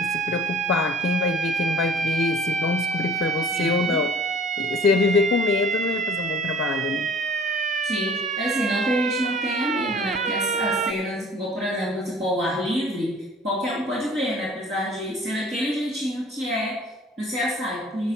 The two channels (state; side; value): normal; both; correlation 0.49